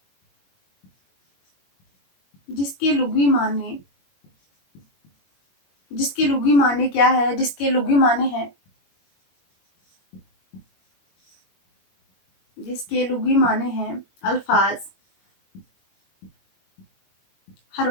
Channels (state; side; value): late; right; 21 ms